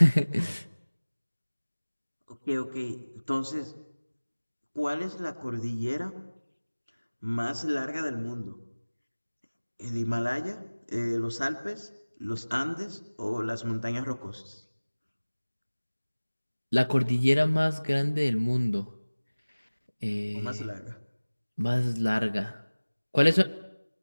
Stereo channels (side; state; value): both; inverted; correlation -1.00